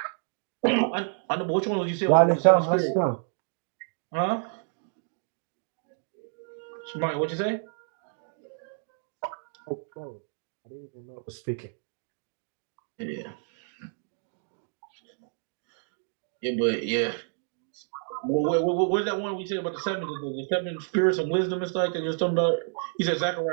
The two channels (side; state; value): left; silent; digital silence